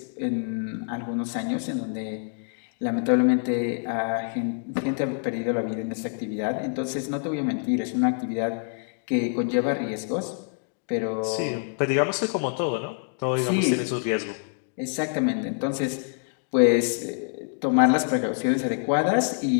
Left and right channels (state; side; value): silent; right; 60 dB below the other